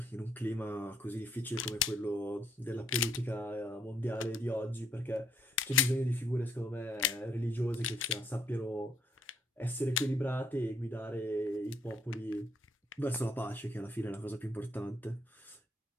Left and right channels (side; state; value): both; normal; correlation 0.69